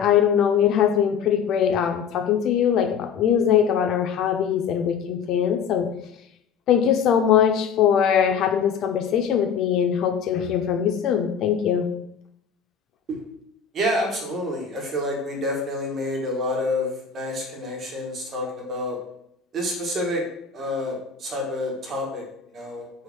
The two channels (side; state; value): right; quieter; 6.8 dB